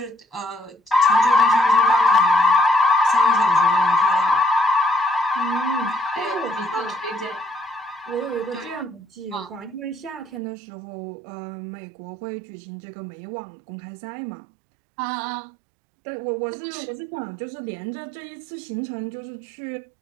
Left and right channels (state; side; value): drops out; left; at 10.4 s